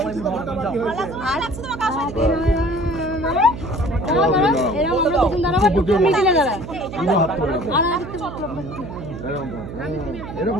আর লাগছে তোমার কাছে? এরকম আমরা দুজন দাঁড়াবো, টুকটু মিডিলে দাঁড়া। আর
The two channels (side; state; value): right; noise; hum, 10 dB below the sound